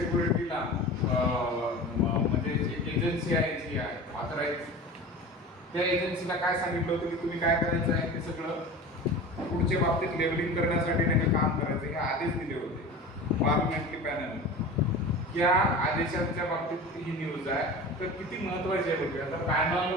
म्हणजे एक एजन्सी आहे जी आहे ऑथराईज, त्या एजन्सीला काय सांगितलं होतं की तुम्ही काय करायचं आहे ते सगळं फूडच्या बाबतीत लेबलिंग करण्यासाठी त्यांनी काम करायचं हे आदेश दिले होते पार्लमेंटरी पॅनल. या आदेशांच्या बाबतीत ही न्यूज आहे. तर किती महत्त्वाची आहे बघूया. आता panel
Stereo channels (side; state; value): both; normal; correlation 0.34